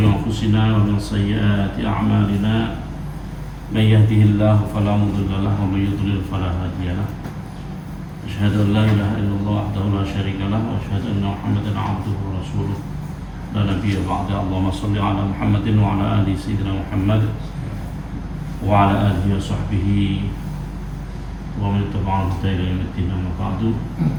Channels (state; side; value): identical; both; correlation 1.00